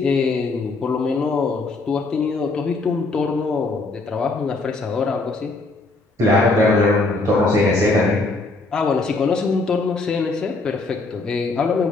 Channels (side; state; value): right; quieter; 3.4 dB